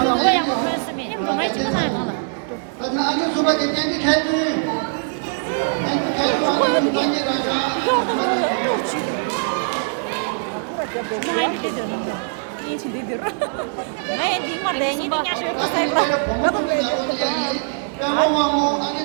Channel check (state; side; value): silent; left; digital silence